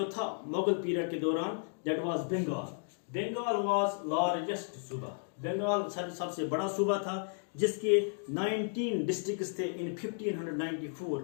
था मुगल पीरियड के दौरान, that was Bengal. Bengal was largest suba. Bengal सबसे बड़ा सूबा था, जिसके 19 डिस्ट्रिक्ट्स थे इन 1594.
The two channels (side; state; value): right; silent; digital silence